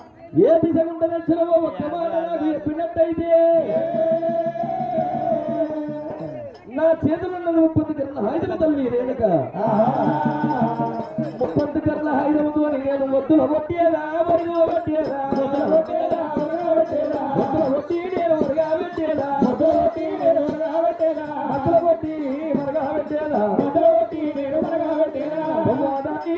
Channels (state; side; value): identical; both; correlation 1.00